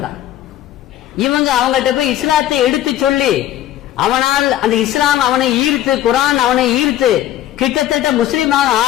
தான். இவங்க அவங்கள்ட்ட போய் இஸ்லாத்தை எடுத்து சொல்லி அவனால் அந்த இஸ்லாம் அவனை ஈர்த்து, குரான் அவனை ஈர்த்து கிட்டத்தட்ட முஸ்லீமாக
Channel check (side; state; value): right; quieter; 12.7 dB